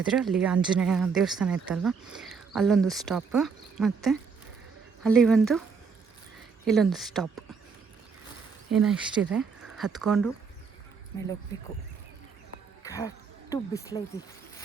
ಅಲ್ಲಿ ಆಂಜನೇಯ ದೇವಸ್ಥಾನ ಇತ್ತಲ್ವ, ಅಲ್ಲೊಂದು ಸ್ಟಾಪ್, ಮತ್ತು ಅಲ್ಲಿ ಇಲ್ಲೊಂದು ಸ್ಟಾಪ್. ಏನೋ ಇಷ್ಟಿದೆ, ಹತ್ಕೊಂಡು ಮೇಲೆ ಹೋಗ್ಬೇಕು. ಕರೆಕ್ಟು ಬಿಸಿಲೈತಿ.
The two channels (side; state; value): left; quieter; 5.4 dB